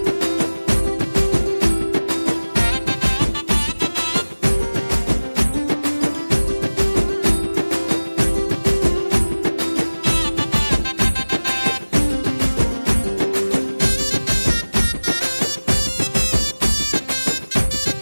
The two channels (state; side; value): inverted; both; correlation -1.00